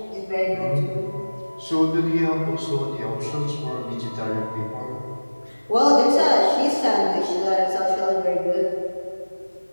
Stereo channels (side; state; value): both; inverted; correlation -1.00